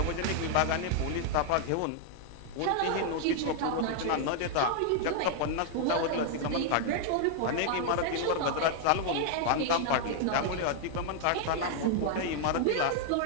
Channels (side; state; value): both; different; correlation 0.00